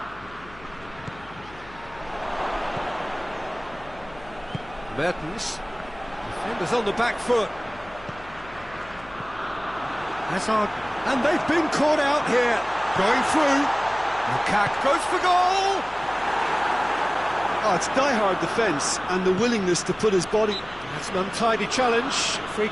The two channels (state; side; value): noise; left; hum, 21 dB below the sound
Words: Mertens, defenders on the back foot. Hazard, and they've been caught out here. Going through. Lukaku goes for goal. Oh, it's die-hard defence and the willingness to put his body... That's an untidy challenge. Free